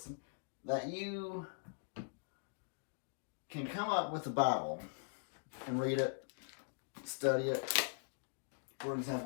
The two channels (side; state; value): right; silent; digital silence